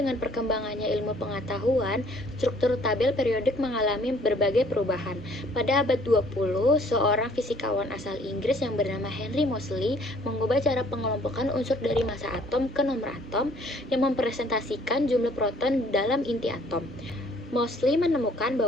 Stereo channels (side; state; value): both; normal; correlation 0.59